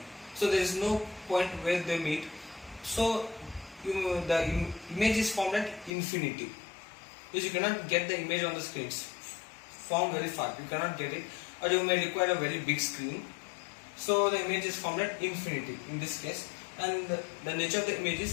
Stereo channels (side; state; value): right; drops out; at 5.9 s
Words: So there is no point where they meet. So the image is formed at infinity. Because you cannot get the image on the screen. It's formed very far. You cannot get it, or you may require a very big screen. So the image is formed at infinity in this case, and the nature of the image